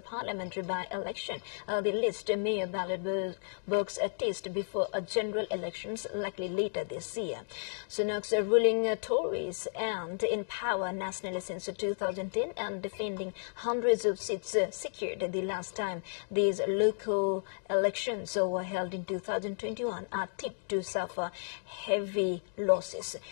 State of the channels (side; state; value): right; silent; digital silence